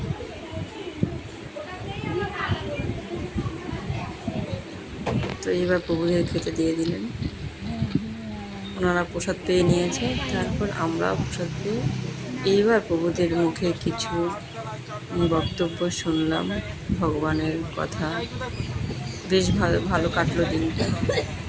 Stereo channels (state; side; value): identical; both; correlation 1.00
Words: তো এইবার প্রভুদের খেতে দিয়ে দিলেন। ওনারা প্রসাদ পেয়ে নিয়েছে, তারপর আমরা প্রসাদ পেয়ে এইবার প্রভুদের মুখে কিছু বক্তব্য শুনলাম, ভগবানের কথা। বেশ ভালো ভালো কাটলো দিনটা।